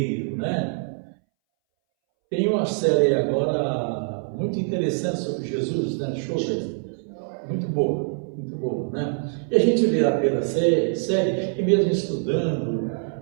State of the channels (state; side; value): silent; left; 62 dB below the other